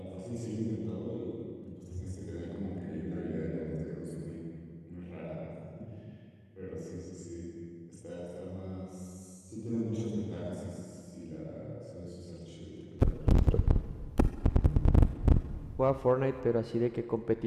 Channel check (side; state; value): both; identical; correlation 1.00